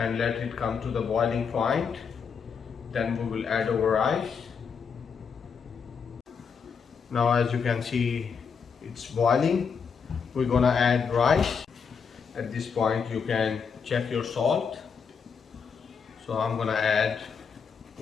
let it come to the boiling point. Then we will add our rice. Now as you can see, it's boiling. We're gonna add rice. At this point you can check your salt. So I'm gonna add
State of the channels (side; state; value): right; quieter; 6.2 dB